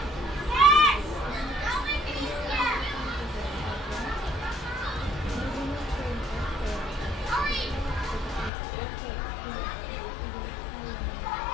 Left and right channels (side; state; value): right; drops out; at 8.5 s